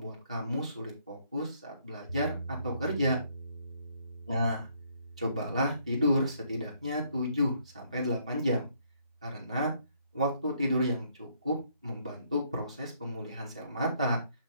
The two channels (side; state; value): both; inverted; correlation -0.68